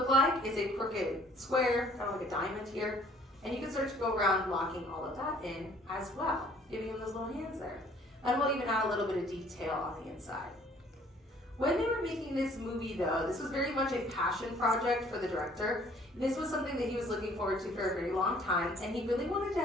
like is a crooked square, kind of like a diamond here. And you can start to go around blocking all of that in as well, giving him those little hands there. And we'll even add a little bit of detail on the inside. When they were making this movie though, this was very much a passion project for the director. This was something that he was looking forward to for a very long time, and he really wanted to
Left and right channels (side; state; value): both; normal; correlation 0.57